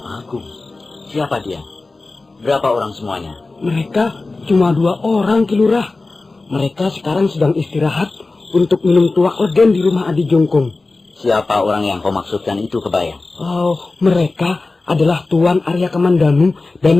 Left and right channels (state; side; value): quieter; right; 3.5 dB